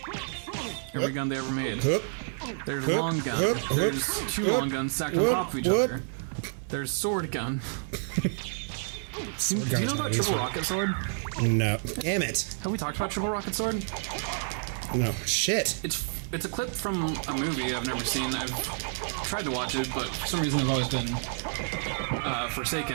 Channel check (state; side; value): silent; left; 58 dB below the other